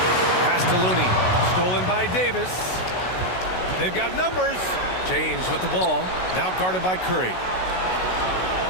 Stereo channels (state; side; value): late; right; 16 ms